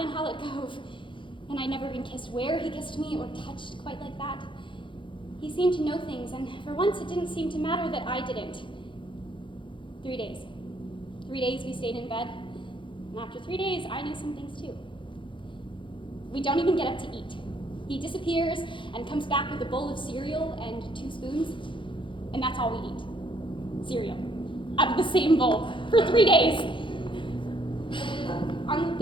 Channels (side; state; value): right; late; 0.24 ms